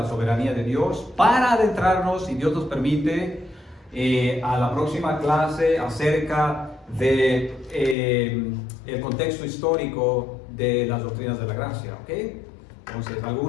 soberanía de Dios, para adentrarnos, si Dios nos permite, a la próxima clase acerca de el contexto histórico de las doctrinas de la gracia, ¿ok? Entonces,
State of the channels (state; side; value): drops out; right; at 8.0 s